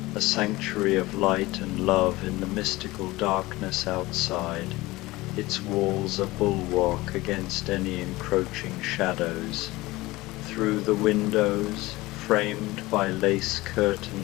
a sanctuary of light and love in the mystical darkness outside, its walls a bulwark against any encroaching shadows. Through the windows, framed by lace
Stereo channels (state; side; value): quieter; right; 19.9 dB